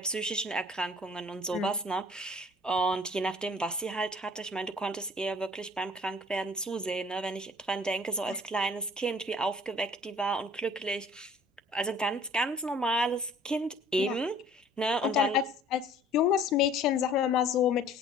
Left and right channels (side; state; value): both; normal; correlation 0.52